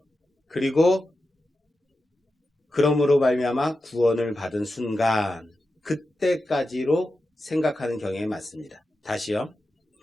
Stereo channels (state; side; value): normal; both; correlation 0.91